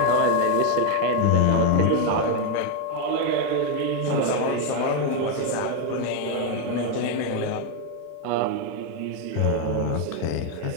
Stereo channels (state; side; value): different; both; correlation 0.01